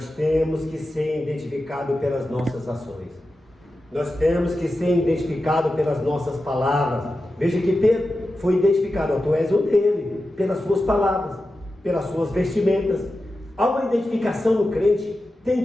temos que ser identificados pelas nossas ações. Nós temos que ser identificados pelas nossas palavras. Veja que Pedro foi identificado, tu és um dele, pelas suas palavras, pelas suas vestimentas. Há uma identificação no crente, tem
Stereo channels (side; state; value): both; normal; correlation 0.92